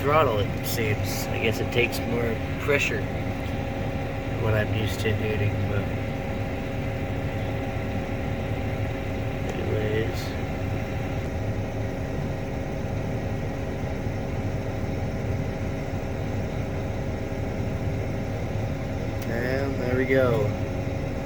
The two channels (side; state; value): both; identical; correlation 1.00